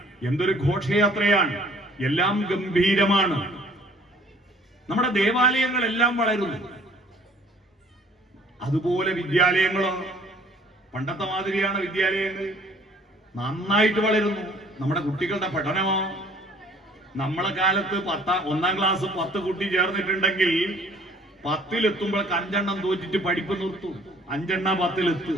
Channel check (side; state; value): both; normal; correlation 0.56